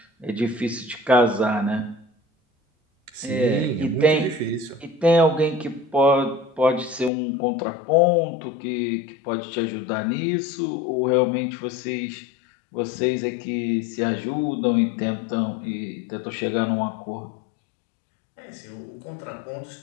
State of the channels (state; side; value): drops out; right; at 7.1 s